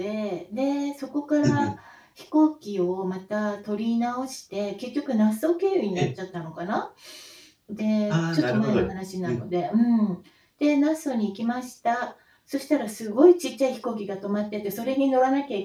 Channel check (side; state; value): both; identical; correlation 1.00